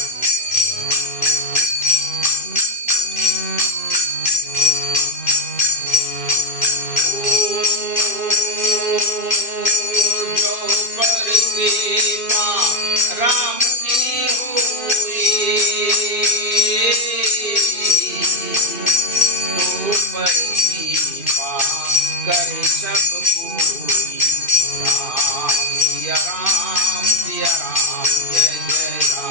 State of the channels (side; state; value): right; late; 2.6 ms